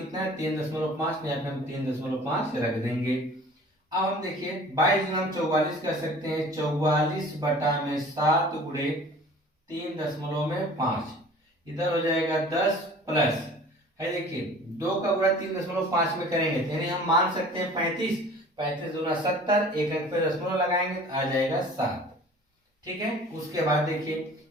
है 3.5 यहाँ पे हम 3.5 रख देंगे। अब हम देखिए 22 गुना 44 कर सकते हैं 44/7 गुणे 3.5 इधर हो जाएगा 10 प्लस है देखिए 2 का गुणा 3.5 में करेंगे यानी हम मान सकते हैं 35 दूना 70 एक अंक पे दशमलव लगाएंगे तो आ जाएगा 7। ठीक है, उसके बाद देखिए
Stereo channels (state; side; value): normal; both; correlation 0.46